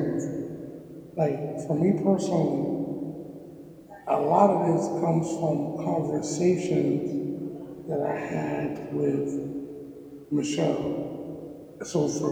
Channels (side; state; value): both; identical; correlation 1.00